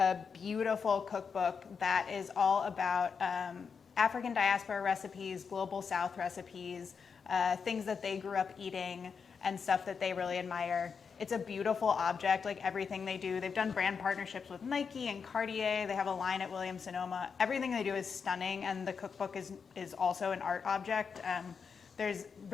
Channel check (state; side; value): quieter; right; 5.9 dB